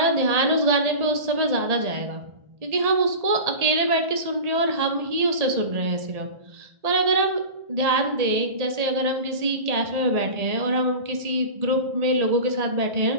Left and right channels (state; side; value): late; left; 1.8 ms